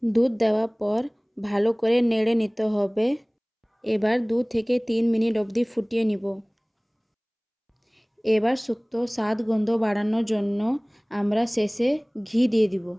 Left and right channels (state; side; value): identical; both; correlation 1.00